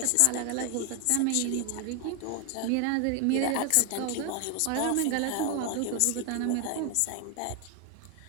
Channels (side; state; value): both; different; correlation 0.01